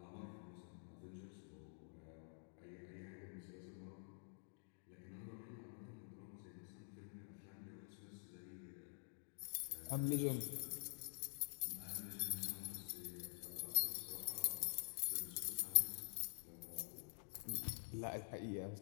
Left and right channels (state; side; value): silent; right; digital silence